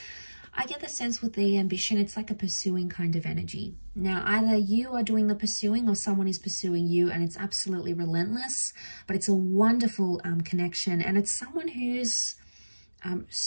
I get the sense with the ambition, it's like a pursuing kind of energy. Now, either you are doing the pursuing or someone is pursuing you, and it's absolutely relentless, but it's a wonderful connection, and it's someone who's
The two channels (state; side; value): inverted; both; correlation -1.00